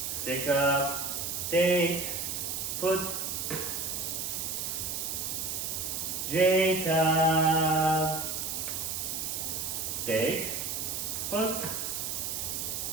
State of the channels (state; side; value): noise; right; hiss, 2 dB below the sound